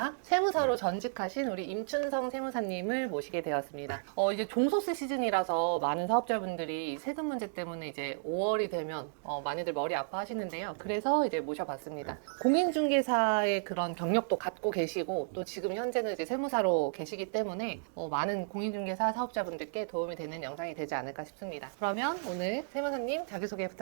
세무사로 전직하신 우리 임춘성 세무사님을 모시게 되었습니다. 이제 종소세 시즌이라서 많은 사업자분들이 세금 문제 때문에 이제 5월이 되면 많이들 머리 아파하시는데요. 그래서 이제 모셔봤습니다. 공인중개사의 그런 경력도 갖고 계시고 또 지금 현재는 이제 세무사로 계시기 때문에 많은 공인중개사 사업자분들께 도움이 되는 영상이 되지 않을까 싶습니다. 그러면 오늘 세무사님 자기소개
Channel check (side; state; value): left; silent; digital silence